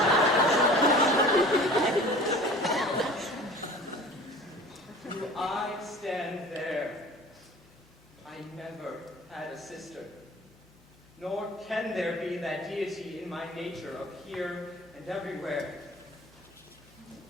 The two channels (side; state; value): both; normal; correlation 0.43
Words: Do I stand there? I never had a sister. Nor can there be that deity in my nature of here and everywhere.